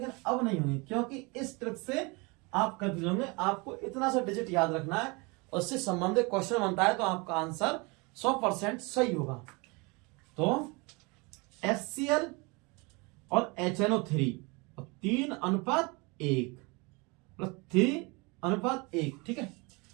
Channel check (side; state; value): left; quieter; 27.8 dB